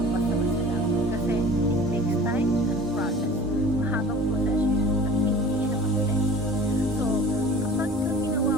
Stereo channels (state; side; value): normal; both; correlation 0.44